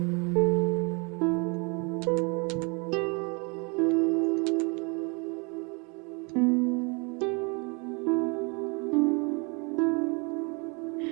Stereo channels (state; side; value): quieter; left; 32.3 dB